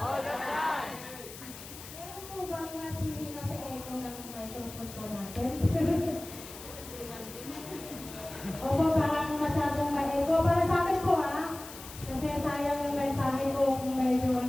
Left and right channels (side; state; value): left; noise; hiss, 14 dB below the sound